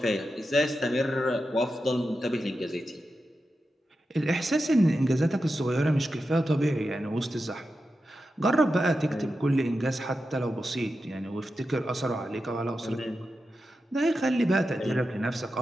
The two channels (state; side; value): normal; both; correlation 0.90